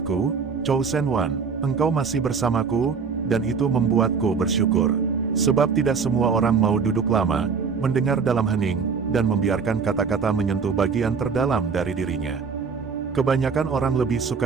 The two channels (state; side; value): quieter; left; 5.6 dB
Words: Chosen One, engkau masih bersamaku, dan itu membuatku bersyukur. Sebab tidak semua orang mau duduk lama, mendengar dalam hening, dan membiarkan kata-kata menyentuh bagian terdalam dari dirinya. Kebanyakan orang lebih